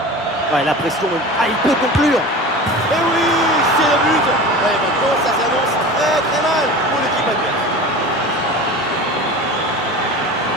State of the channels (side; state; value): both; normal; correlation 0.34